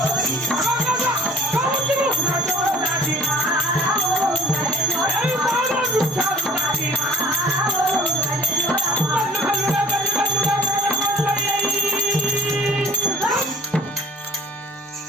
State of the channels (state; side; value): normal; both; correlation 0.51